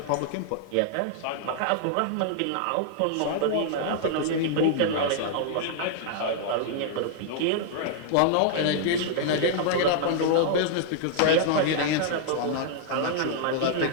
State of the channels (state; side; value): different; both; correlation -0.01